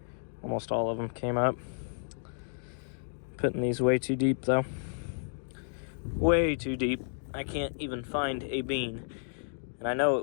almost all of them came up. Putting these way too deep though. Way too deep. I can't even find a bean. And I know it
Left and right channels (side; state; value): right; silent; digital silence